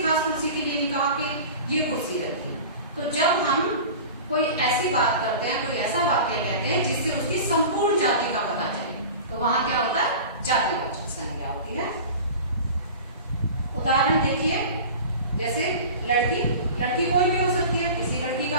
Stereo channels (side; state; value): both; inverted; correlation -0.36